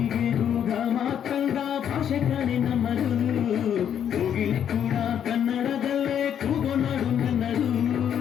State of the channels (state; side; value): quieter; right; 9.1 dB